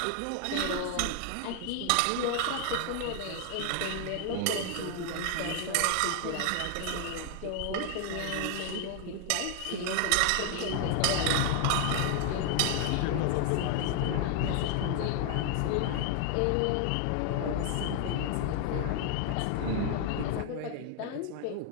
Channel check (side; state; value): both; different; correlation 0.00